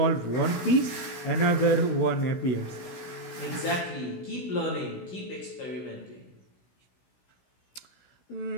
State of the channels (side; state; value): right; late; 16 ms